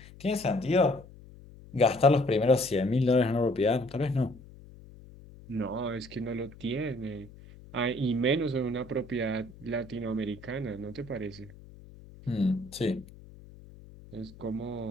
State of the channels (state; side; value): noise; left; hum, 20 dB below the sound